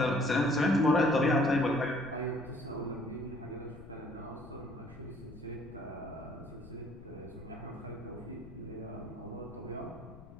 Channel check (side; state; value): left; noise; rumble, 17 dB below the sound